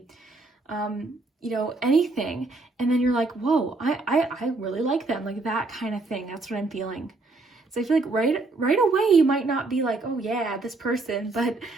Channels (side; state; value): left; quieter; 3.3 dB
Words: you know, anything. And then you're like, whoa, I really like them. Like that kind of thing. That's what I'm feeling. So I feel like right away, you might not be like, oh yeah, this person, but